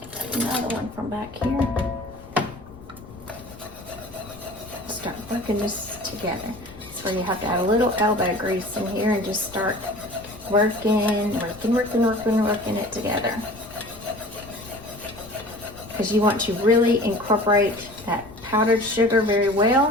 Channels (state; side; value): noise; left; rumble, 20 dB below the sound